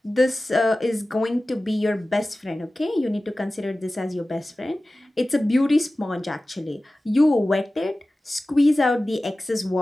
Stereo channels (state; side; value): normal; both; correlation 0.96